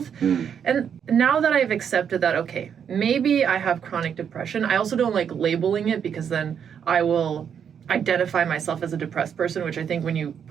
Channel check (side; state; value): left; quieter; 7.9 dB